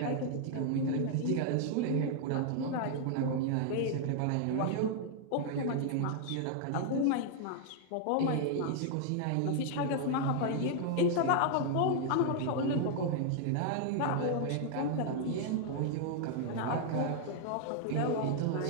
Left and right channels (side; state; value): both; different; correlation 0.00